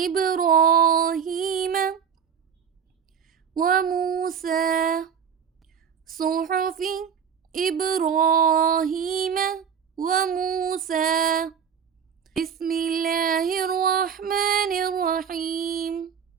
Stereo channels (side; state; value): left; quieter; 7.5 dB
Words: وموسى صحف إبراهيم وموسى. بسم الله الرحمن الرحيم.